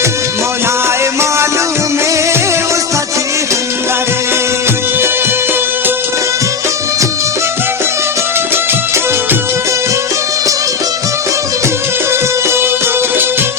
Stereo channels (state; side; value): quieter; right; 5.6 dB